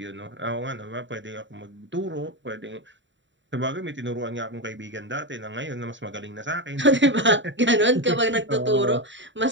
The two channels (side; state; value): left; late; 0.54 ms